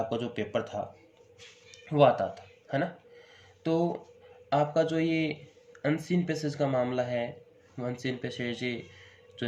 जो पेपर था वो आता था, है ना। तो आपका जो ये अनसीन पैसेज का मामला है, अनसीन पैसेज जो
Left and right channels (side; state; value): both; identical; correlation 1.00